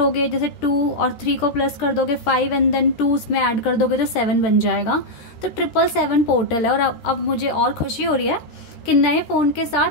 जैसे 2 और 3 को प्लस कर दोगे 5 एंड देन 2 उसमें ऐड कर दोगे तो 7 बन जाएगा। तो 777 पोर्टल है। और अब मुझे और खुशी हो रही है कि नए फ़ोन के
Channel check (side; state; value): right; late; 13 ms